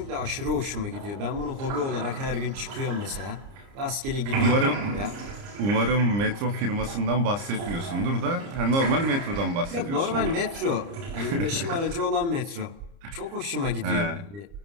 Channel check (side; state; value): left; late; 30 ms